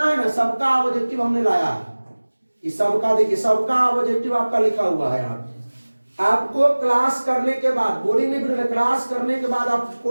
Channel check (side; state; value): both; inverted; correlation -1.00